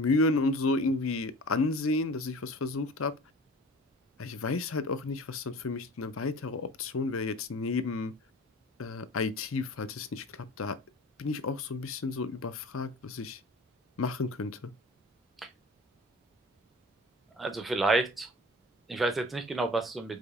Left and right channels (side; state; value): both; normal; correlation 0.41